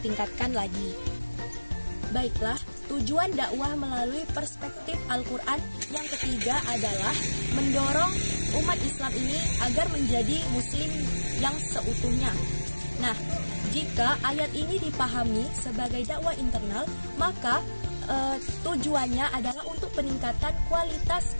lagi. Baiklah, tujuan dakwah melalui perspektif Al-Quran yang ketiga adalah mendorong umat Islam ini agar menjadi muslim yang seutuhnya. Nah, jika ayat ini dipahami sebagai dakwah internal, maka tujuannya adalah untuk peningkatan kualitas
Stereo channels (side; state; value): both; inverted; correlation -1.00